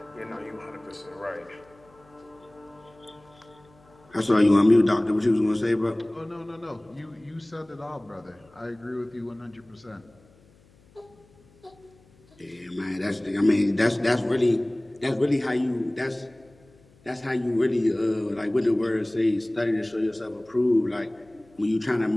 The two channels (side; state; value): left; noise; hum, 29 dB below the sound